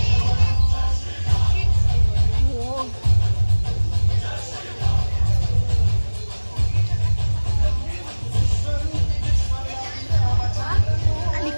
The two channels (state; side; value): inverted; both; correlation -1.00